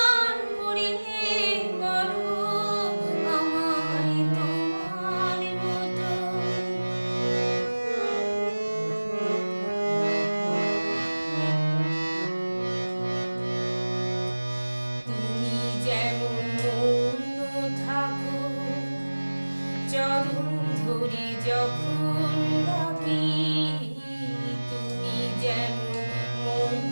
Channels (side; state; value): both; inverted; correlation -1.00